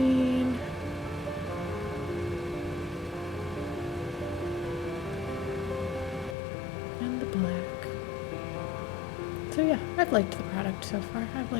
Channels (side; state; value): right; drops out; at 6.4 s